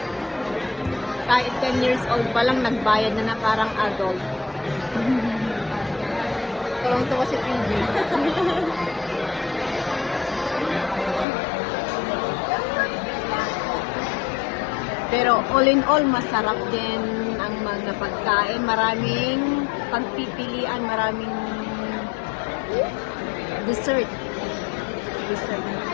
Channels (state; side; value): drops out; right; at 11.2 s